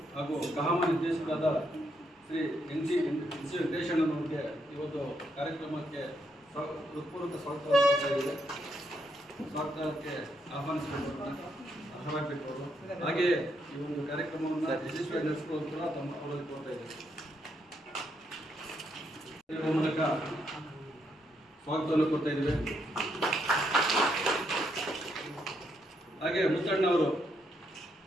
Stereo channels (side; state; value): both; normal; correlation 0.77